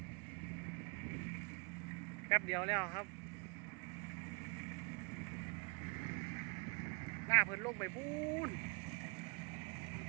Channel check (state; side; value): quieter; left; 34.6 dB